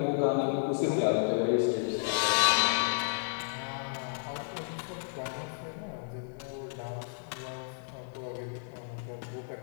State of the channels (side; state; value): right; silent; 56 dB below the other